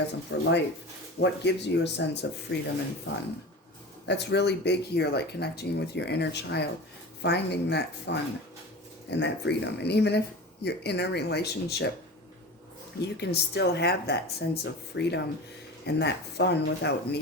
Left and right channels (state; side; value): normal; both; correlation 0.33